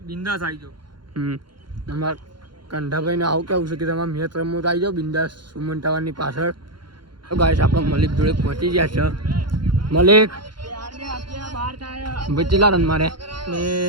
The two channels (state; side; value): late; left; 0.72 ms